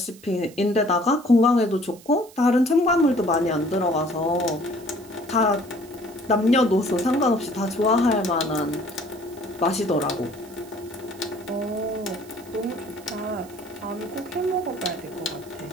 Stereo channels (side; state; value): right; noise; hiss, 23 dB below the sound